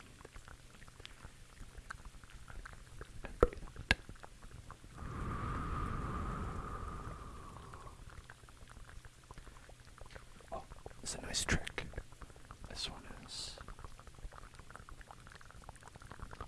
And breathe out. Oh, it's a nice trick. This one is.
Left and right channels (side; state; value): both; identical; correlation 1.00